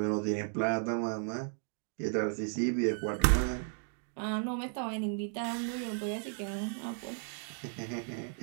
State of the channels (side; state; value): left; silent; 55 dB below the other